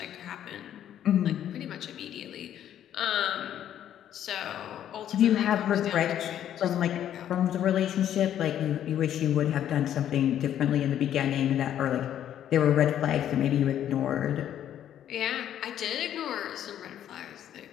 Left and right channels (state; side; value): quieter; right; 10.6 dB